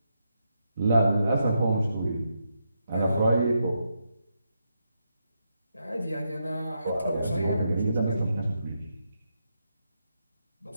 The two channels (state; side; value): inverted; both; correlation -0.82